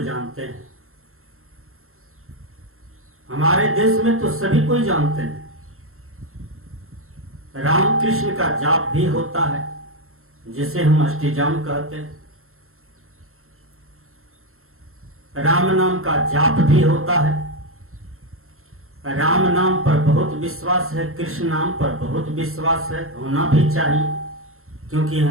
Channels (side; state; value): left; late; 0.62 ms